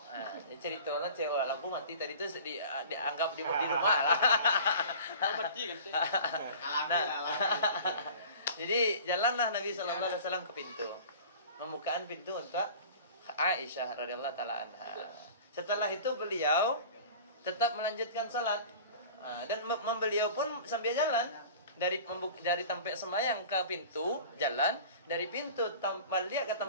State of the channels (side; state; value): both; inverted; correlation -0.42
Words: Ceritanya cewek lampu mati tadi itu dianggap di rumah lah. Jadi jalanlah Nabi SAW ke pintu, membukakan pintu untuk Aisyah radhiyallahu taala anha. Setelah itu beliau tetap melanjutkan salat dan beliau pun sambil jalan dari tempat sembahyang ke pintu jalan, dari pintu balik ke